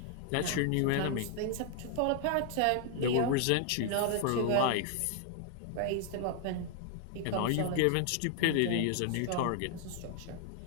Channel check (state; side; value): different; both; correlation 0.00